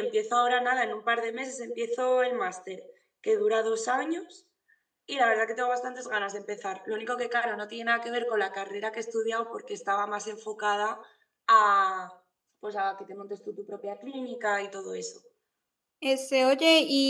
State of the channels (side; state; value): both; identical; correlation 1.00